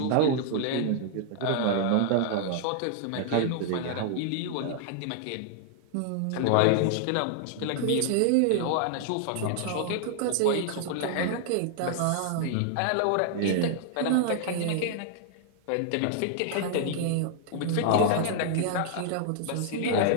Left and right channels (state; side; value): different; both; correlation -0.01